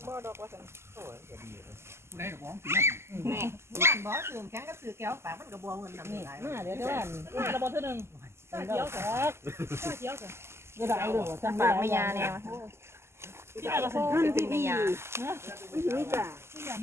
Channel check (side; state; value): left; late; 0.12 ms